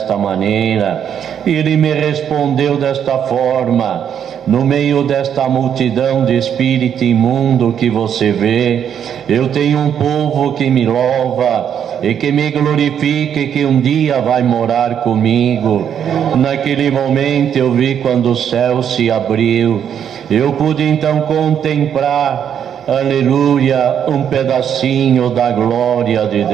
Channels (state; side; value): quieter; left; 8.7 dB